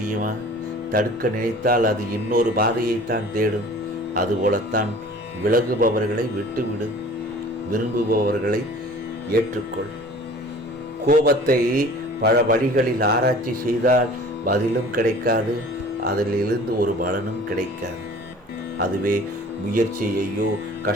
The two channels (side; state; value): both; normal; correlation 0.46